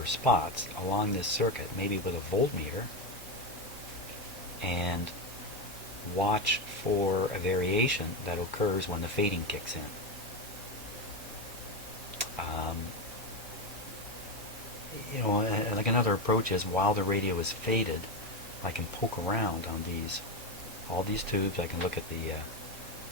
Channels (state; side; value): normal; both; correlation 0.13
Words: spots along this circuit, maybe with a voltmeter, and watch for a variation that occurs when the fading kicks in? Like another approach is, while the radio is faded, I can poke around on all these tubes. I can look at the